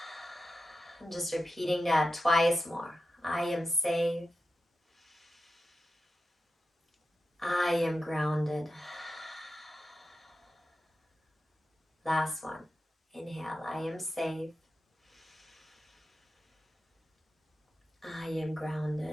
And just repeating that twice more. I am safe, I am grounded. Last one. Inhale, I am safe, I am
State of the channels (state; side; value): normal; both; correlation 0.91